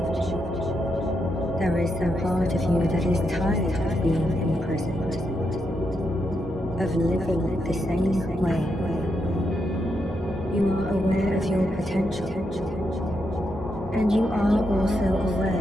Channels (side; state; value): both; normal; correlation 0.82